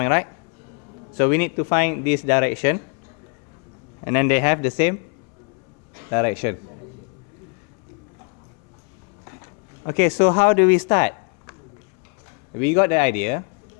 right? So we need to find this direction. And then they have the same direction. Okay, so how do we start? We got the idea.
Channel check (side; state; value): right; quieter; 35.6 dB